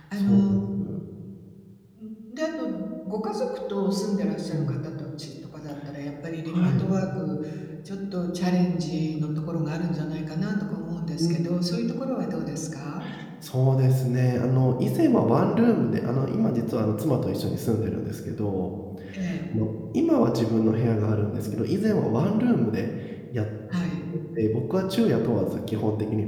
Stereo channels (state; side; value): identical; both; correlation 1.00